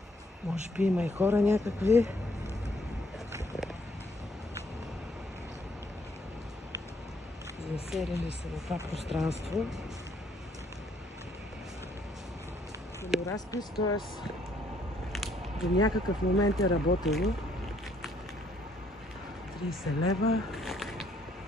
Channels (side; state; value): both; normal; correlation 0.67